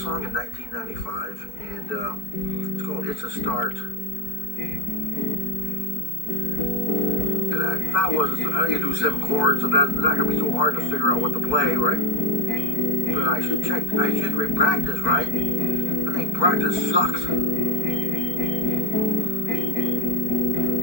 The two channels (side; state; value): right; late; 4.5 ms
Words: in 1995, and it's called It's a Start. And I thought I need to do 7 chords, so that's not going to be so hard to figure out what to play, right? But I should practice, right? I think practice sucks.